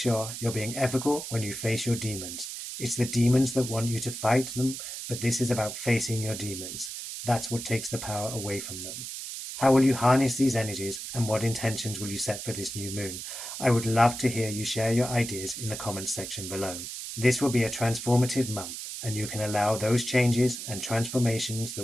you're being ethical when you face your demons. It's the demons that want you to fight them, but this is about facing your demons. That's what takes the power away from them. How will you harness these energies, and what intentions will you set for this new moon? I would love to hear you share your ideas in the comments section below. This will be a transformative month, and you can allow those changes and transformations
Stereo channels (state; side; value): noise; right; hiss, 8 dB below the sound